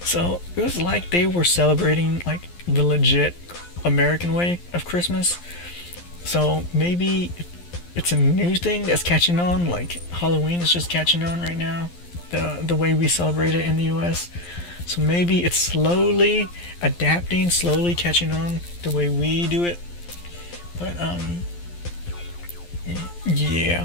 So it was like they were celebrating like the legit American way of Christmas. So maybe it's a new thing that's catching on, like Halloween is just catching on right now, the way we celebrate it in the US. So maybe it's slowly adapting, slowly catching on the way we do it. But yeah,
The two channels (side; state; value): right; late; 11 ms